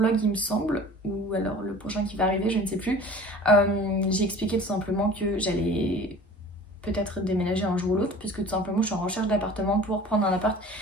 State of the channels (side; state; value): both; normal; correlation 0.43